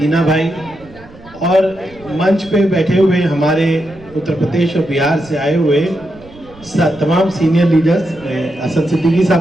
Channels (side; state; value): right; noise; rumble, 23 dB below the sound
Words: भाई और मंच पे बैठे हुए हमारे उत्तर प्रदेश और बिहार से आए हुए तमाम सीनियर लीडर्स, असद सिद्दीकी